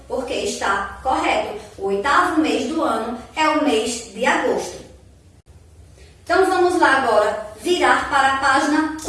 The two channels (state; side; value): identical; both; correlation 1.00